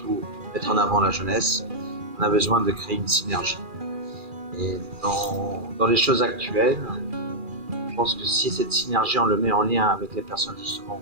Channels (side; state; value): left; late; 2.4 ms